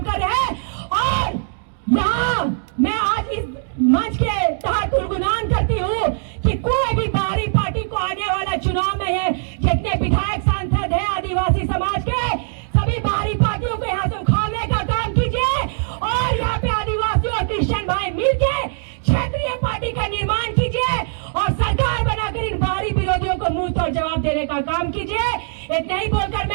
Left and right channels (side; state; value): left; silent; digital silence